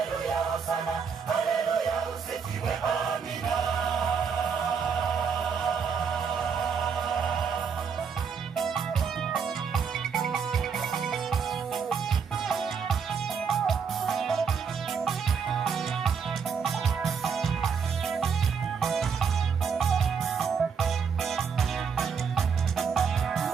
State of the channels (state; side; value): quieter; left; 6.3 dB